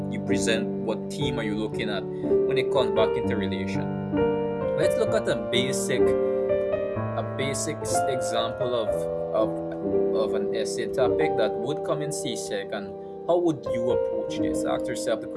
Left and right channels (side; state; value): both; identical; correlation 1.00